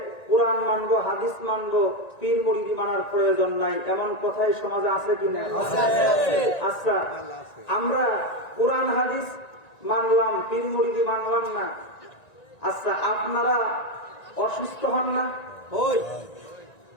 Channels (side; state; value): right; late; 1.9 ms